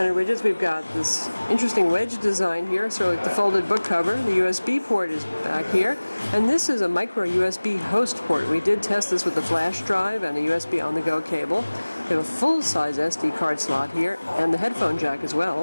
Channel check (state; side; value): inverted; both; correlation -1.00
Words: widgets, we've got this interesting wedge design here, sort of like the folded book cover. The USB port is back here, and this is a micro USB host port. We did test this with the flash drive and a USB on-the-go cable. We have a full-size SD card slot here, and the headphone jack as